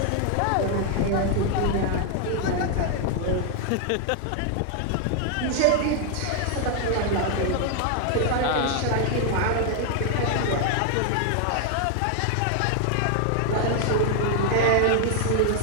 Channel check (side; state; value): both; different; correlation 0.00